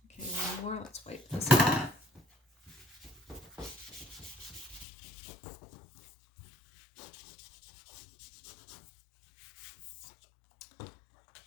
Okay, one more. Let's wipe this off.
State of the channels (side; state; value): right; drops out; at 4.9 s